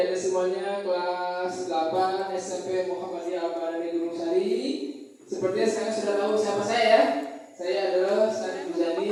semuanya kelas 8 SMP Muhammadiyah Al-Badani Gunung Sari. Sepertinya sekarang sudah tahu siapa saya ya. Saya adalah Syarif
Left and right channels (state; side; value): identical; both; correlation 1.00